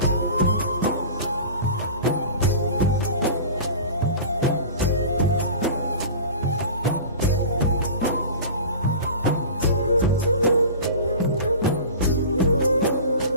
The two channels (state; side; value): inverted; both; correlation -0.36